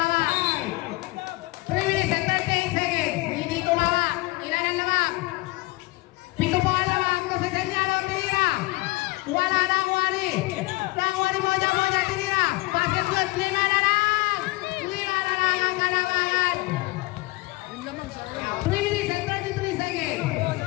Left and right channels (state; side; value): quieter; right; 22.0 dB